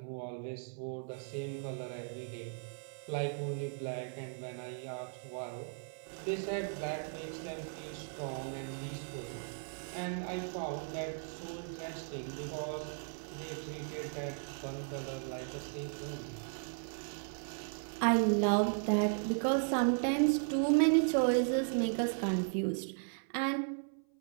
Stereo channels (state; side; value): silent; left; 53 dB below the other